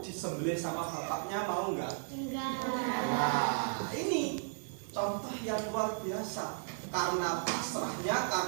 disembelih sama bapaknya mau nggak? Enggak. Nah, ini contoh yang luar biasa. Karena pasrahnya,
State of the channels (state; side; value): silent; left; digital silence